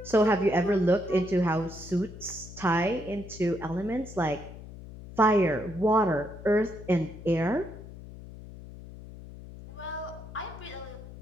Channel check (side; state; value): left; noise; hum, 15 dB below the sound